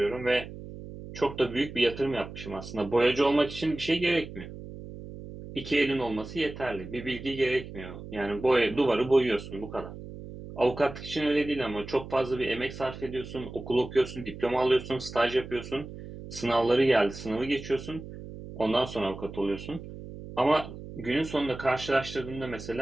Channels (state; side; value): noise; right; hum, 12 dB below the sound